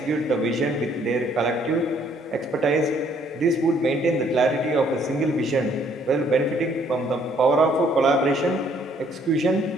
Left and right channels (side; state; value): both; normal; correlation 0.64